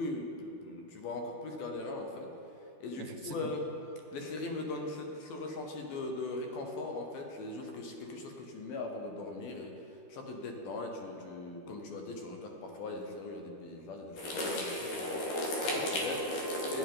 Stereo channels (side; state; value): right; late; 13 ms